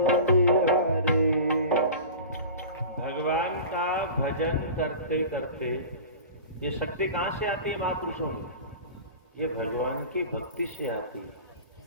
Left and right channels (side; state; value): both; inverted; correlation -0.35